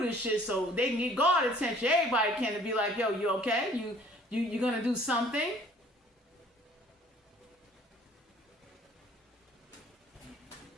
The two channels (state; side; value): normal; both; correlation 0.55